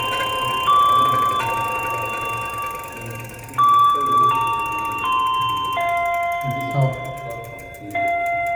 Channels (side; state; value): both; identical; correlation 1.00